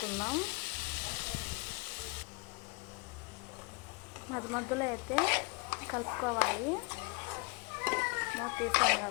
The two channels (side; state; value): right; quieter; 28.2 dB